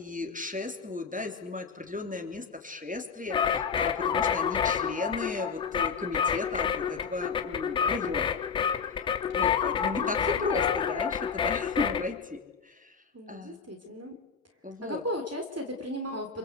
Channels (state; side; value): quieter; right; 5.7 dB